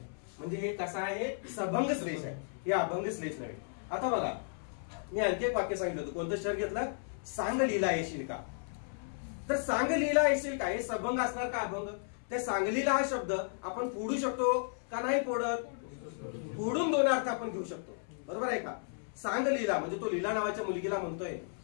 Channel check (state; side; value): silent; right; 55 dB below the other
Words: म्हणजे हे कसं आहे? सभंग श्लेष आहे. हे अभंग श्लेष नव्हे. आता बघा, मी आणखी एक वाक्य सांगितलं होतं. कोणतं शहर घेतलं? सांगलीला येशील का? तर सांगलीला येशील का हे सभंग असणार का अभंग? त्या सांगलीला हा शब्द आपण फोडू शकतो का नाही फोडत? फोडून दोन अर्थ आपण घेऊ शकतो. बरोबर आहे का? सांगलीला म्हणजे तो लीला नावाच्या मुलगीला म्हणतोय